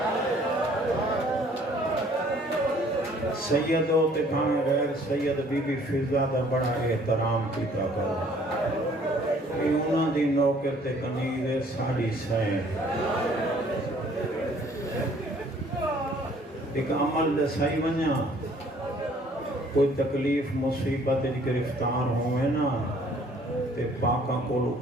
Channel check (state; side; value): normal; both; correlation 0.58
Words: سید ہو تے بھاں غیر سید بی بی فضا دا بڑا احترام کیتا کرو، کہ انہاں دی نوکر تے کنید ساڑی سائیں۔ ایک عمل دسائی ونیا، کوئی تکلیف مصیبت گرفتار ہوئے نا تے پاکاں کو